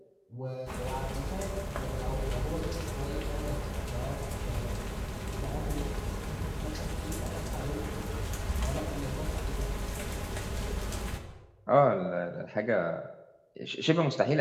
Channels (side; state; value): both; identical; correlation 1.00